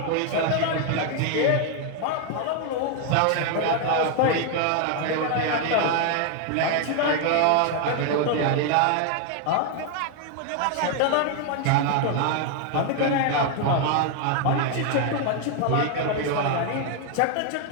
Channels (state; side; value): different; both; correlation 0.01